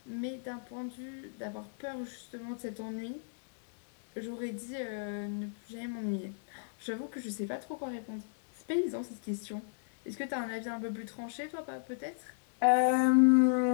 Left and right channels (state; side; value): silent; right; digital silence